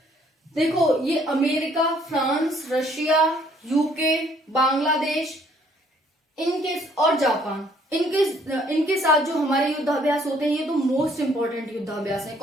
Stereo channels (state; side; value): normal; both; correlation 0.63